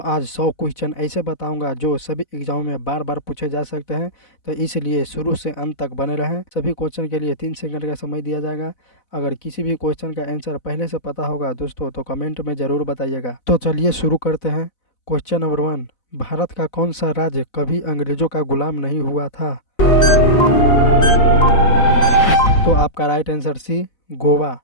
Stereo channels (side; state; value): right; late; 4.0 ms